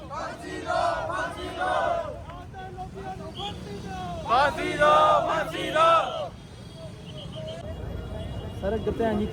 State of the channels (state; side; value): identical; both; correlation 1.00